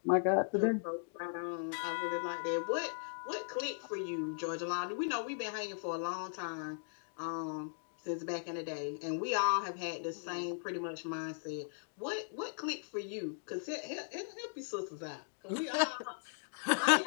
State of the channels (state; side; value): silent; right; digital silence